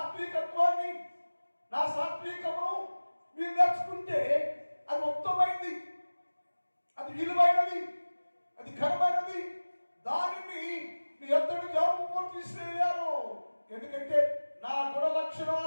నా సాత్వికమును మీరు నేర్చుకుంటే అది ఉత్తమైంది, అది విలువైనది, అది ఘనమైనది. దానిని మీ ఎంతటి జాబు తీసివేయారు. ఎందుకంటే నా గుణ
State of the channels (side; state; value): both; inverted; correlation -1.00